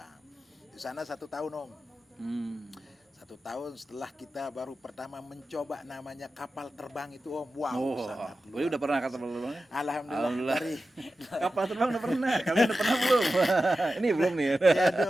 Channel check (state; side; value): normal; both; correlation 0.93